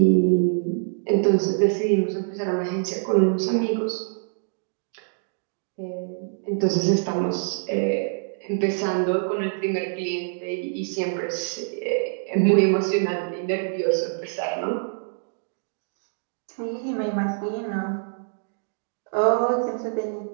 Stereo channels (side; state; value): left; silent; digital silence